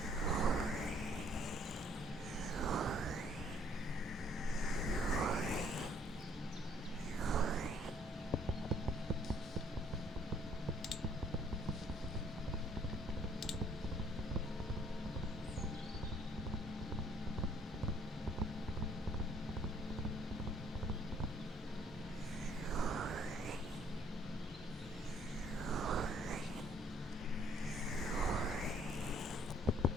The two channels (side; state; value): both; normal; correlation 0.63